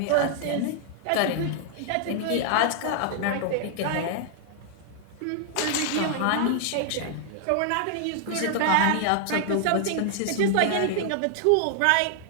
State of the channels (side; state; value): both; different; correlation 0.00